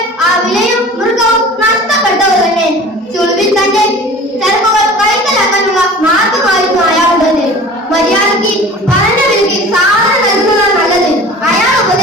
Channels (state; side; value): normal; both; correlation 0.41